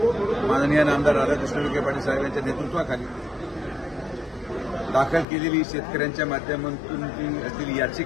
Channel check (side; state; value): right; drops out; at 5.2 s